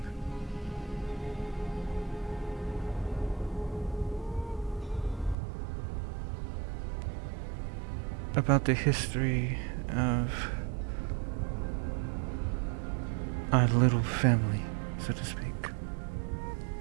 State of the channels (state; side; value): drops out; left; at 5.4 s